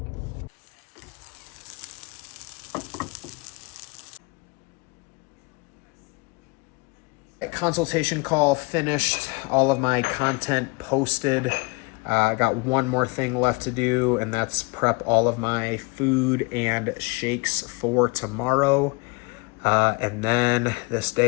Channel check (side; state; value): right; quieter; 28.1 dB